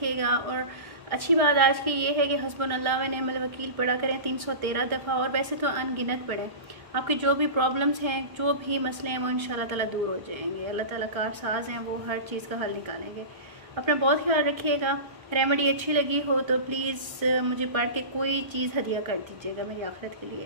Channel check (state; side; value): late; left; 1.3 ms